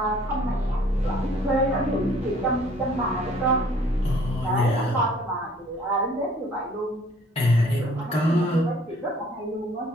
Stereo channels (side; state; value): both; normal; correlation 0.56